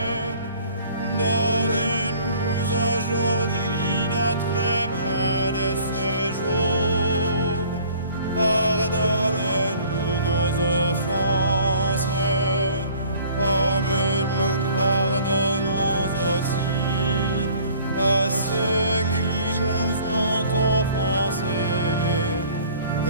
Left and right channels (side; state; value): both; inverted; correlation -0.52